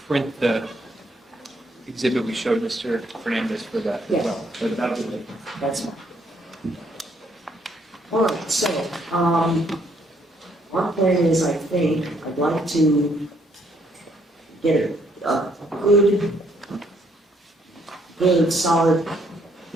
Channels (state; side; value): normal; both; correlation 0.69